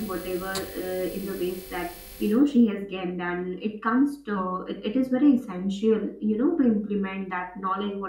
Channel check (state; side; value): identical; both; correlation 1.00